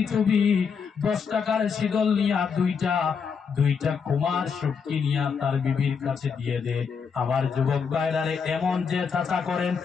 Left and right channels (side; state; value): right; quieter; 6.1 dB